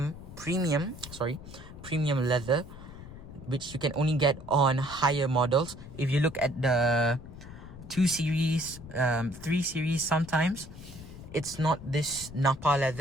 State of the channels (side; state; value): left; noise; rumble, 15 dB below the sound